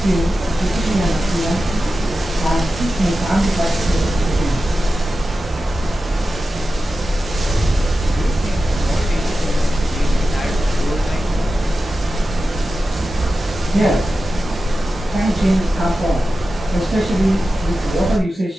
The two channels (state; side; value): normal; both; correlation 0.93